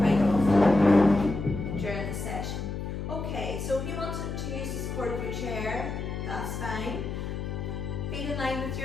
often. during the session. Okay, so if you want to use the support of your chair, that's fine. Feet in line with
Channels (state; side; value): noise; left; hum, 5 dB below the sound